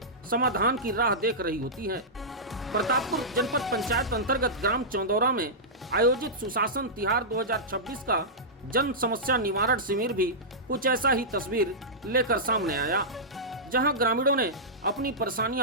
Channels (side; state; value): both; normal; correlation -0.13